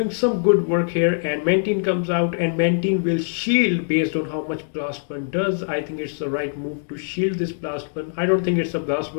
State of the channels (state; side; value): silent; right; digital silence